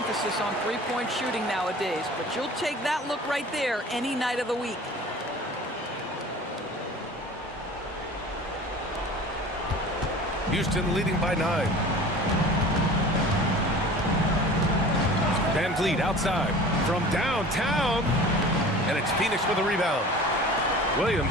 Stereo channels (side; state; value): both; normal; correlation 0.42